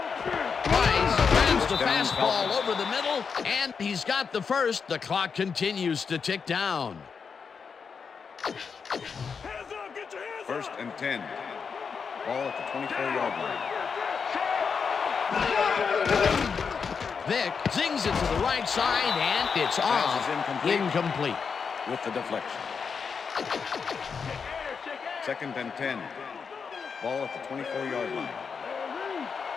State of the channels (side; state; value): right; quieter; 5.8 dB